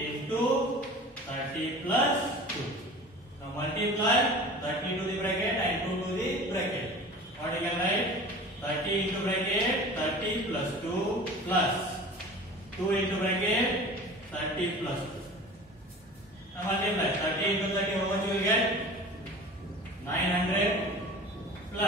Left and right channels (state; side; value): normal; both; correlation 0.39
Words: 30 plus 2. Now multiply 30 to the bracket and 2 to the bracket. What we can write? 30 into bracket 30 plus 2 plus 2 into bracket 30 plus 2. Now multiply 30 into 30, how much you will get? 900